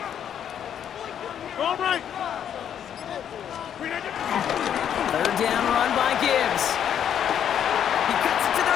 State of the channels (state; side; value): quieter; right; 9.2 dB